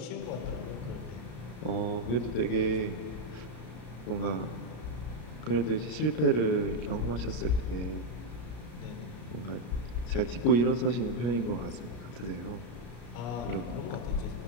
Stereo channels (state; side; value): late; right; 33 ms